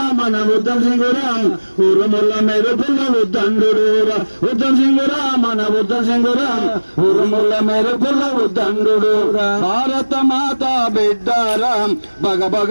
మన ఉద్దం సింగురా ఊరుముల మెరుపుల ఉద్దండురా ఉద్దం సింగురా మన ఉద్దం సింగురా ఊరుముల మెరుపుల ఉద్దండురా భారత మాత బిడ్డారా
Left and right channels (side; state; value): both; inverted; correlation -1.00